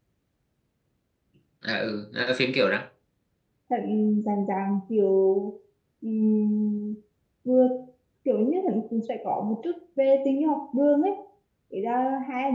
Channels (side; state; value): both; identical; correlation 1.00